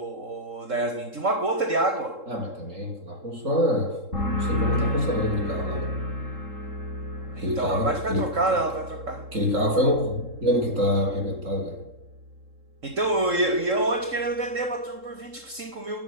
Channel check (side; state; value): left; late; 3.7 ms